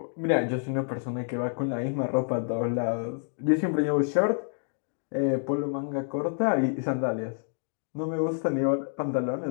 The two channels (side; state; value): right; silent; 59 dB below the other